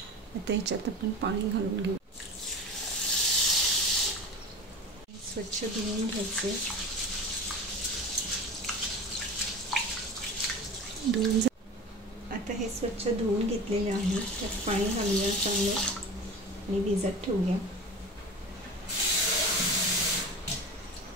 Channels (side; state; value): both; normal; correlation 0.32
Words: आता ह्याच्यात आपण पाणी घालून घेऊ। स्वच्छ धुवून घ्यायचे। आता हे स्वच्छ धुवून घेतलेले आहे, त्यात पाणी घालूया चांगलं आणि भिजत ठेवूया।